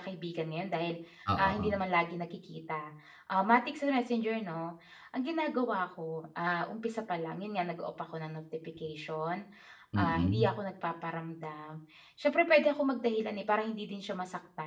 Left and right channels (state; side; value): identical; both; correlation 1.00